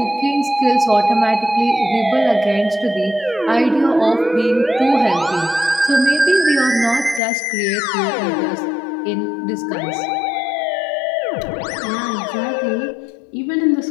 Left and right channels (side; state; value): right; drops out; at 7.2 s